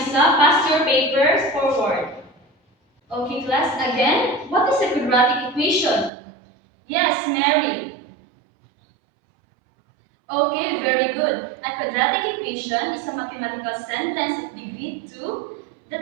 up. Pass your papers forward. Okay, class, again, what is a quadratic equation? Yes, Mary. Okay, very good. A quadratic equation is a mathematical sentence of degree 2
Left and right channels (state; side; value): drops out; left; at 6.1 s